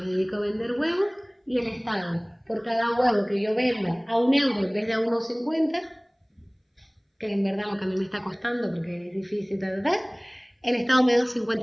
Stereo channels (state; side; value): identical; both; correlation 1.00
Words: dedico a vender huevos y el Estado, por cada huevo que yo venda a 1 euro en vez de a 1,50, que en verdad lo que a mí me está costando porque es difícil, el Estado me da